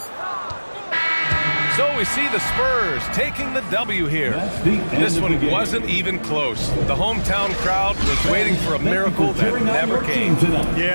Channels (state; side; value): inverted; both; correlation -1.00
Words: So we see the Spurs taking the W here. This one wasn't even close. The hometown crowd was waiting for a miracle that never came.